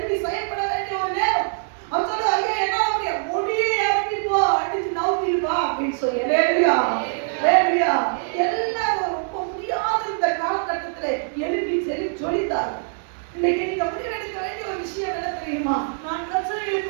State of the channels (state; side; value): silent; left; digital silence